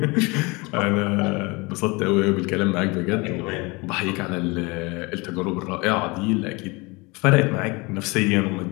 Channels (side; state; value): right; quieter; 26.1 dB